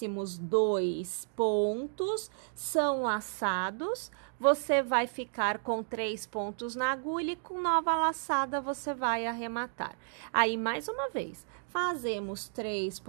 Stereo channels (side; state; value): left; silent; digital silence